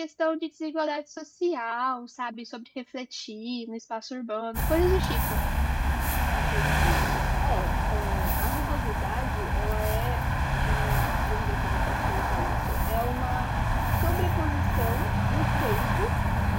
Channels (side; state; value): both; identical; correlation 1.00